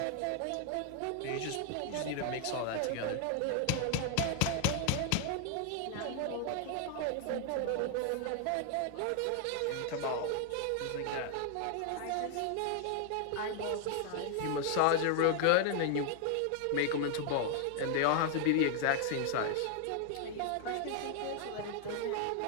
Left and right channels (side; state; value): both; different; correlation 0.00